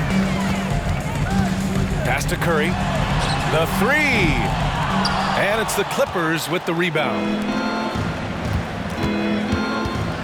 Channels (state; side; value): identical; both; correlation 1.00